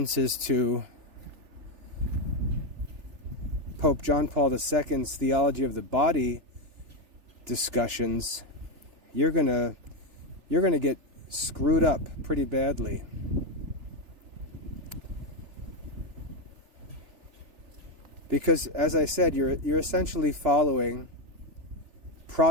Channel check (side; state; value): left; late; 3.4 ms